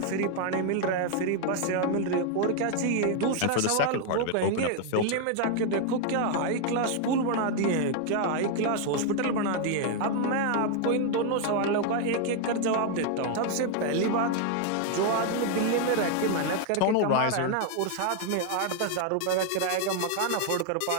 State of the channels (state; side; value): different; both; correlation 0.00